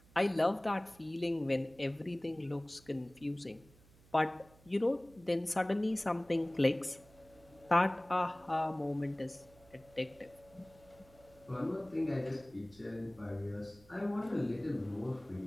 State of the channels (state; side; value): noise; right; hum, 26 dB below the sound